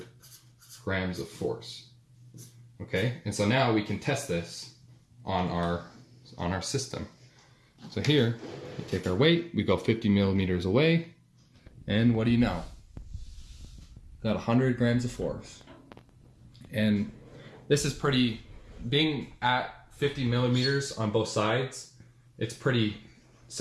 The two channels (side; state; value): both; identical; correlation 1.00